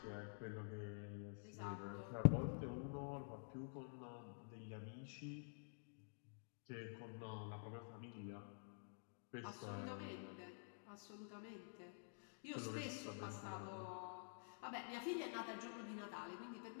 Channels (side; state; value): right; silent; digital silence